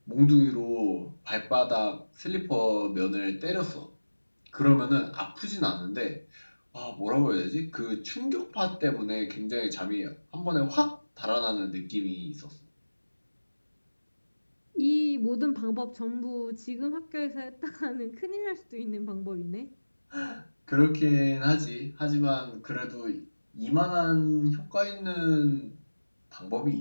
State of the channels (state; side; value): inverted; both; correlation -1.00